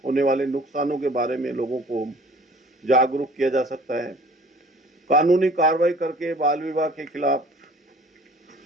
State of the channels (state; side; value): normal; both; correlation 0.50